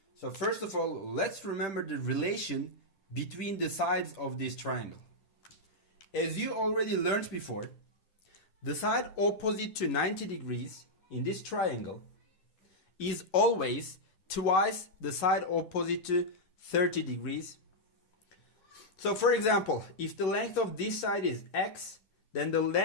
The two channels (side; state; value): right; late; 10 ms